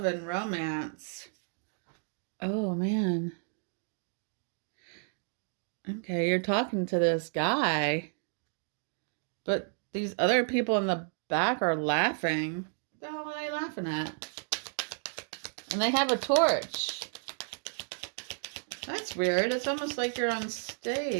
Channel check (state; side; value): silent; left; 56 dB below the other